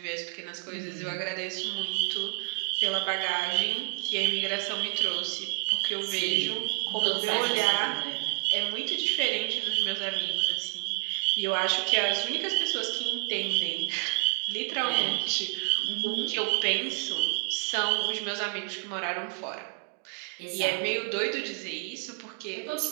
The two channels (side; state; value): left; quieter; 40.0 dB